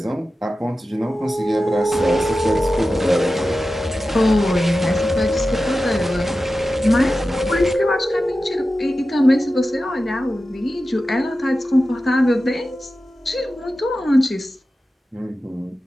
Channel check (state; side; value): normal; both; correlation 0.93